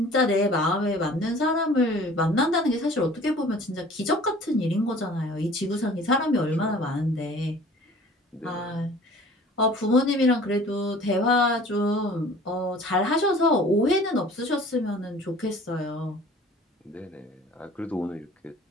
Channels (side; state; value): both; normal; correlation 0.47